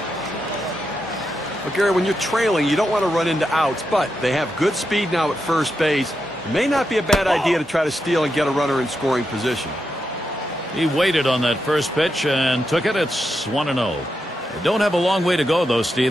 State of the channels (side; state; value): both; normal; correlation 0.85